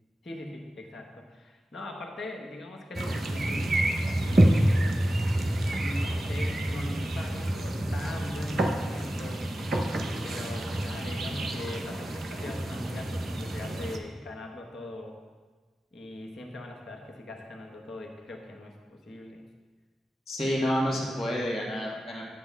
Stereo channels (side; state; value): both; normal; correlation 0.93